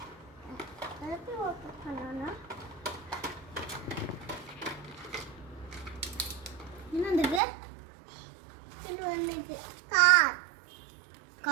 எப்படி ஓப்பன் பண்ணணும்? என்ன வந்திருக்கு? இது வந்துருக்கு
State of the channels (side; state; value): left; drops out; at 7.4 s